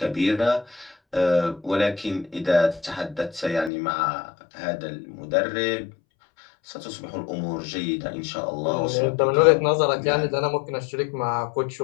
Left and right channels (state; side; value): drops out; right; at 3.7 s